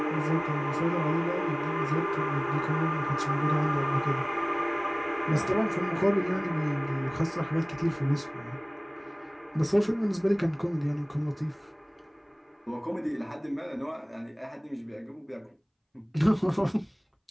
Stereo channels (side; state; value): both; identical; correlation 1.00